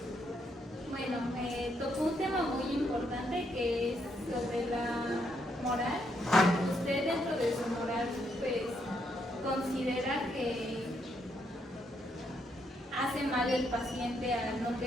Bueno, tocó un tema muy importante que es sobre la moral. ¿Usted dentro de su moral pues considera que hace mal el paciente al no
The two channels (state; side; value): normal; both; correlation 0.76